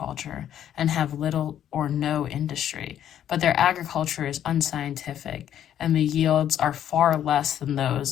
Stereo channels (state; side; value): quieter; right; 10.5 dB